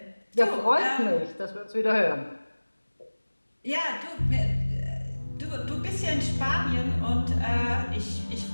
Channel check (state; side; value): inverted; both; correlation -1.00